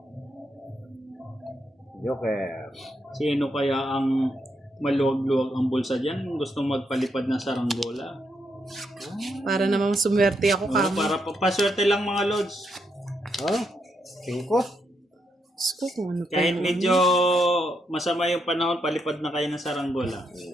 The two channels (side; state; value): both; normal; correlation 0.79